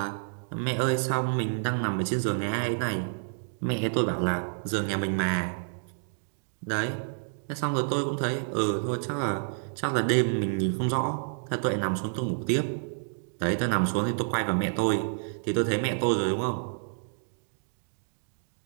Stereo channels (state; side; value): silent; left; digital silence